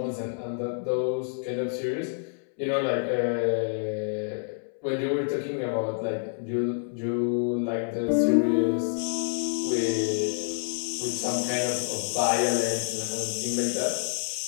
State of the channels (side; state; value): right; silent; 59 dB below the other